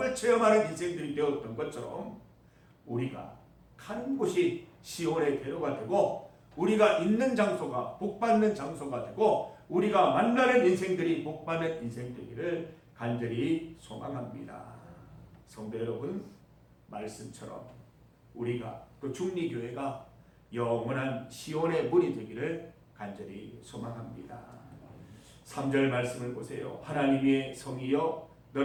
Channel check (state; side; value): identical; both; correlation 1.00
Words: 체험하는 인생들이 되었던 것처럼 우리가 가는 곳이 시온의 대로가 되고 우리가 있는 장소가 복받는 장소가 되고 우리가 만나는 인생들이 복받는 인생 되기를 간절히 소망합니다. 성도 여러분, 말씀처럼 우리가 또 중리교회가 영원한 시온의 문이 되기를 간절히 소망합니다. 3절 말씀을 보세요. 하나님의 성이여